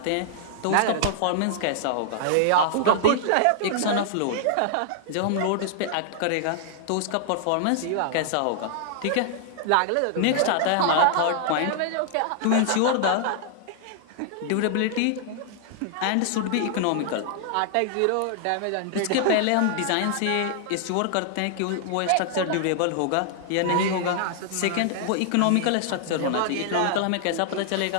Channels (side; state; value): both; different; correlation -0.01